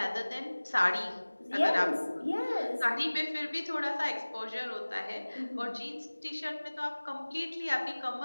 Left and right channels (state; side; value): inverted; both; correlation -1.00